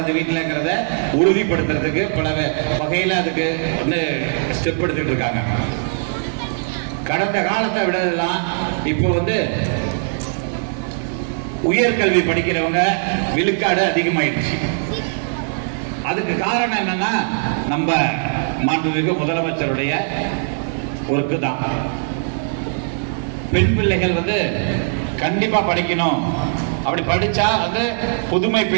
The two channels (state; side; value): silent; left; 57 dB below the other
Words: வீட்டிலங்கிறத உறுதிப்படுத்துறதுக்கு பல வகையில அதுக்கு வந்து ஸ்டெப் எடுத்துட்டு இருக்காங்க. கடந்த காலத்தை விடலாம் இப்போ வந்து உயர்கல்வி படிக்கிறவங்க விழுக்காடு அதிகமாயிடுச்சு. அதுக்கு காரணம் என்னன்னா, நம்ம மாண்புமிகு முதலமைச்சருடைய ஒர்க்கு தான். பெண் பிள்ளைகள் வந்து கண்டிப்பா படிக்கணும். அப்படி படிச்சா வந்து புதுமை